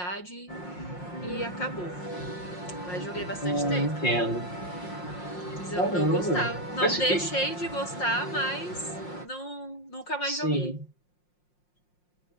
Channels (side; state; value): right; late; 5.6 ms